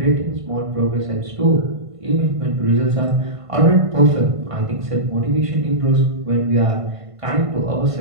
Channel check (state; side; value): late; left; 1.5 ms